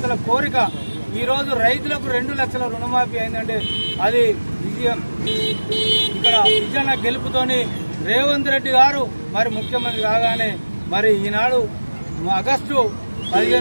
కోరిక ఈరోజు రైతులకు 2 లక్షల రుణమాఫీ అయిందంటే అది విజయం. ఇక్కడ విజయన గెలుపుతోని రేవంత్ రెడ్డి గారు మరి ముఖ్యమంత్రి కాగానే మరి ఈనాడు ఆగస్టు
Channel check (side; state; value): both; inverted; correlation -1.00